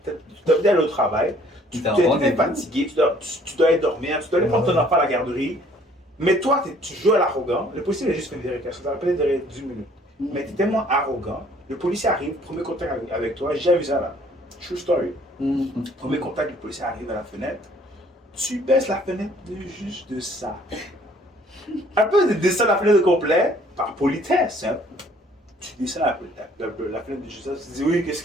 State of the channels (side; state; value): both; normal; correlation 0.59